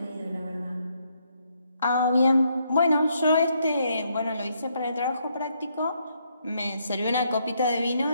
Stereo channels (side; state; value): both; inverted; correlation -0.74